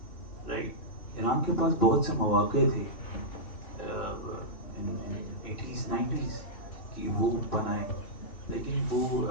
Right? Iran کے پاس بہت سے مواقع تھے eighties 90s کہ وہ بنائے, لیکن وہ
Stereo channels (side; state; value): right; late; 2.7 ms